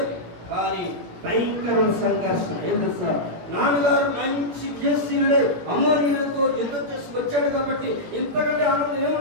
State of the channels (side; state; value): left; late; 18 ms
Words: కానీ భయంకరమైన సంఘర్షణ. ఏం తెలుసా, నాన్నగారు మంచి విజయశీలుడే అమ్మోనీయులతో యుద్ధం చేసి వచ్చాడు కాబట్టి ఇంతకంటే ఆనందం